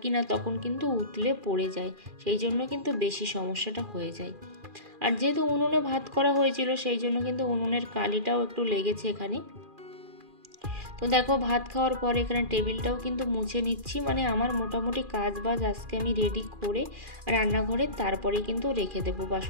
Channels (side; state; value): left; late; 2.4 ms